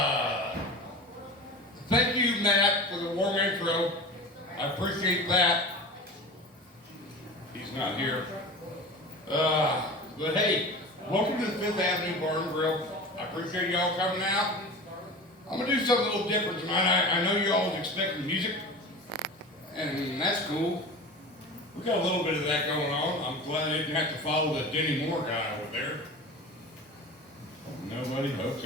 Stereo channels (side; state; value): both; normal; correlation 0.33